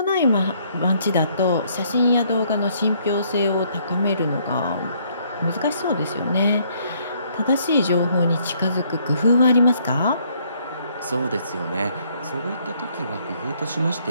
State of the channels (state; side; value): inverted; both; correlation -0.67